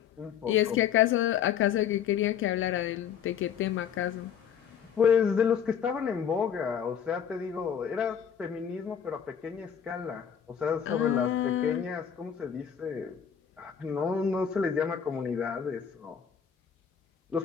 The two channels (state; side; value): quieter; right; 8.2 dB